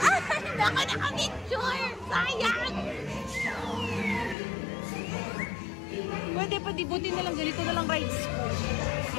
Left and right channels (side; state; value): right; drops out; at 4.4 s